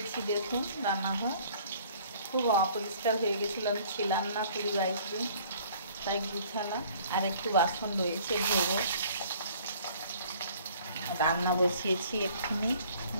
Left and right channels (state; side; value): inverted; both; correlation -0.54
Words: দেখুন রান্নাঘর খুব অপরিষ্কার হয়ে গেছিলো, আমি ছিলাম না 20-22 দিন, তাই গুছালাম। আর একটু বাসন রয়েছে ধোবো। রান্না বসিয়েছি এক্ষুনি,